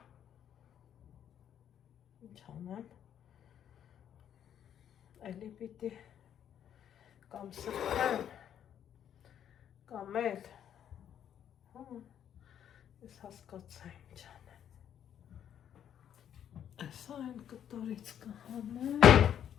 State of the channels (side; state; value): right; quieter; 9.6 dB